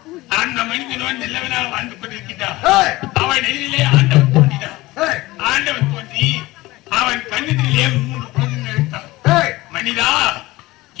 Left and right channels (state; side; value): quieter; right; 19.4 dB